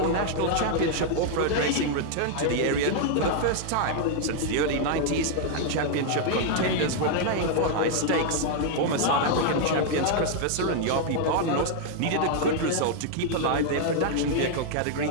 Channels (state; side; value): different; both; correlation 0.00